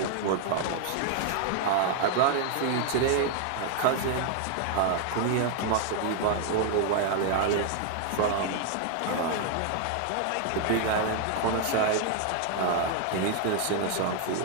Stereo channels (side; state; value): both; different; correlation 0.00